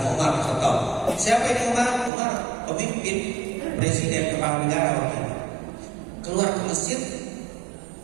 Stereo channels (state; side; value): drops out; left; at 2.1 s